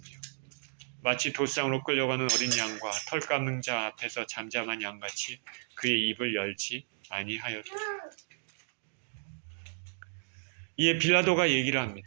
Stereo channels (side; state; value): left; silent; digital silence